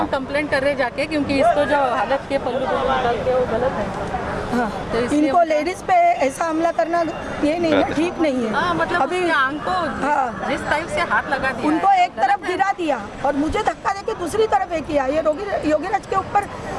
कंप्लेंट कर रहे जाके, क्योंकि इसको जो हालत के पल्लू निकाल के वो गलत है। हाँ, तो इसलिए इनको लेडीज पे ऐसा हमला करना ये नहीं ना, ठीक नहीं है। हाँ, मतलब अभी उसके आंख को हाँ। जिस टाइप से हाथ लगा दिया उनको है, एक तरफ गिरा दिया और मुझे धक्का देके दूसरी तरफ एक किया। ये योगीराज के ऊपर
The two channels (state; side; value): identical; both; correlation 1.00